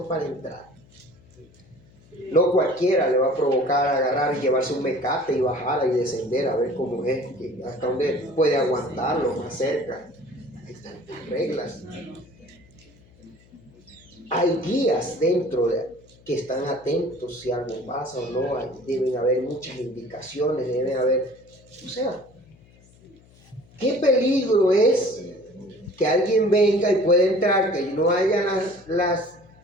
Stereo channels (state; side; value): noise; left; hum, 28 dB below the sound